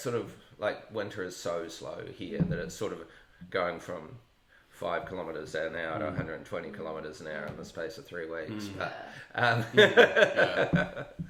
of like winter is so slow here that it's sort of going from 5 kilometres an hour to 120 kilometres an hour in the space of 3 weeks. But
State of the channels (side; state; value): both; identical; correlation 1.00